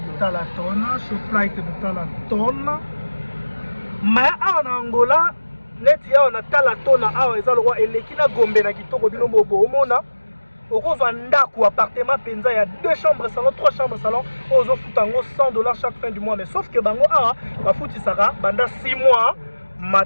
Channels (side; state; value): both; inverted; correlation -1.00